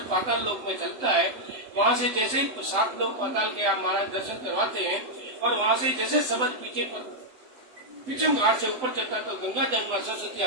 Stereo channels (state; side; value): late; left; 7.9 ms